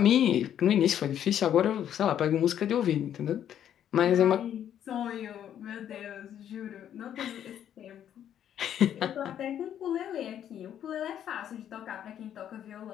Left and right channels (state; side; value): quieter; right; 10.0 dB